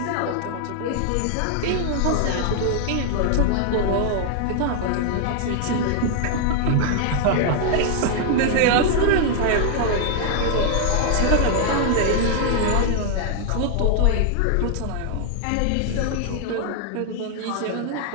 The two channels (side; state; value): both; different; correlation 0.00